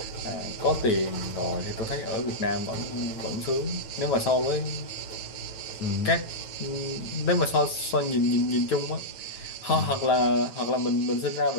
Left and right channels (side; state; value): right; late; 9.1 ms